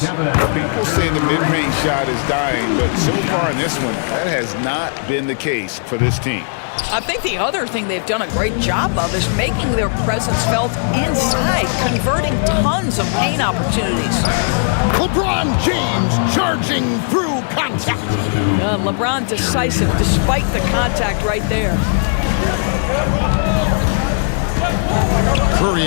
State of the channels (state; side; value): silent; right; 66 dB below the other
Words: say the mid-range shot is dying, but so far in this one, that has not been the case for this team. I think the other thing they've done a great job of is making their presence felt inside, converting tons of paint opportunities. LeBron James charging through contact. LeBron decisive despite the contact right there. Curry